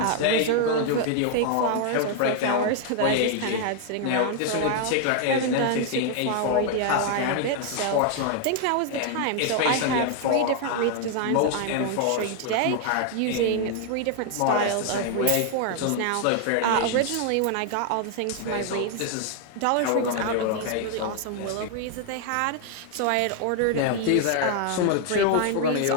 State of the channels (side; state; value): both; different; correlation 0.00